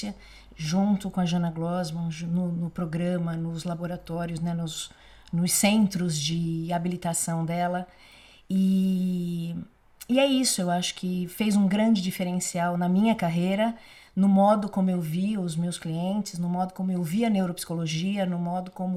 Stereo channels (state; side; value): identical; both; correlation 1.00